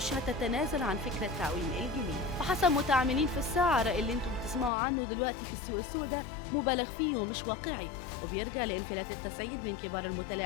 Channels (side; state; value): right; drops out; at 4.7 s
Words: هتتنازل عن فكرة تعويم الجنيه. وحسب متعاملين في السعر اللي انتم بتسمعوا عنه دلوقتي في السوق السوداء مبالغ فيه ومش واقعي، وبيرجع لانفلات التسعير من كبار